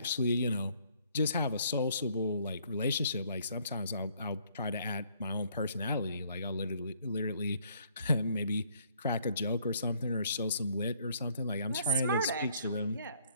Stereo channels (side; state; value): both; inverted; correlation -0.65